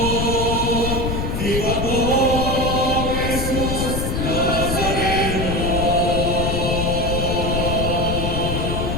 viva po, Jesus Nazareno.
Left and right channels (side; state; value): left; noise; rumble, 1 dB below the sound